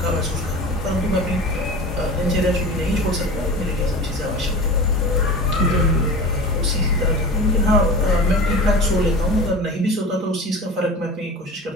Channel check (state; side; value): normal; both; correlation 0.34